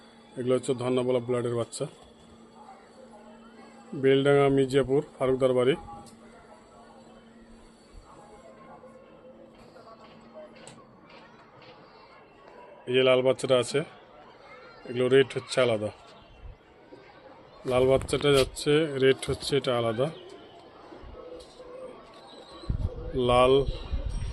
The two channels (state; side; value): identical; both; correlation 1.00